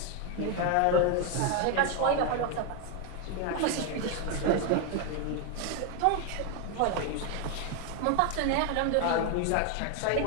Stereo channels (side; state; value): both; different; correlation 0.01